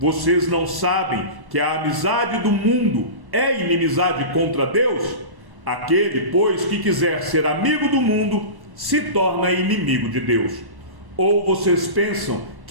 não sabem que a amizade do mundo é inimizade contra Deus? Aquele, pois, que quiser ser amigo do mundo, se torna inimigo de Deus. Ou vocês pensam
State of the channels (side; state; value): left; late; 1.1 ms